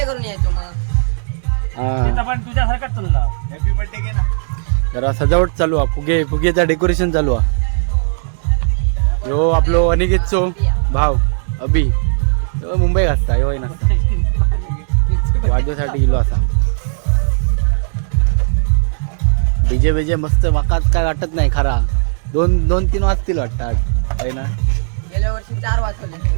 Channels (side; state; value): left; silent; digital silence